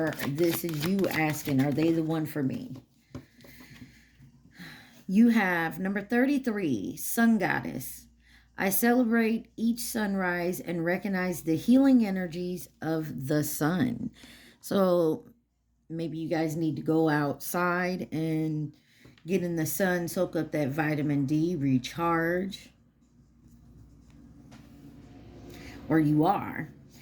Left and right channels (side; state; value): both; identical; correlation 1.00